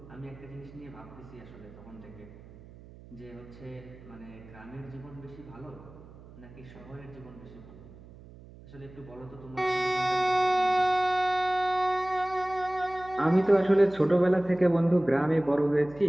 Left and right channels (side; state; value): right; noise; hum, 20 dB below the sound